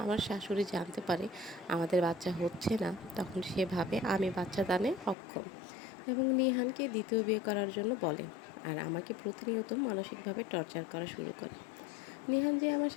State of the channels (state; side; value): drops out; right; at 5.2 s